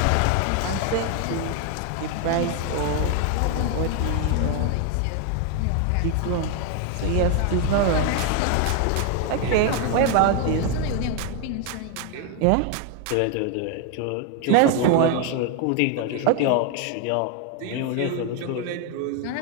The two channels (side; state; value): both; different; correlation 0.01